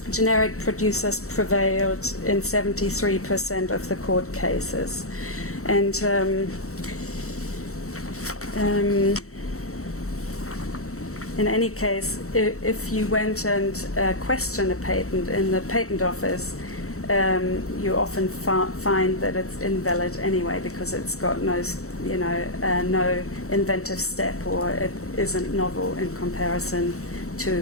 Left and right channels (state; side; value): late; right; 0.64 ms